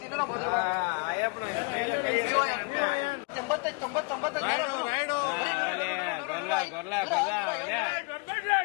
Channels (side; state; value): right; quieter; 30.8 dB